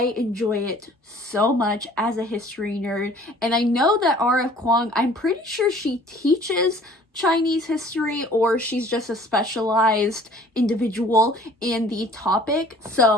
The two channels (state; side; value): normal; both; correlation 0.52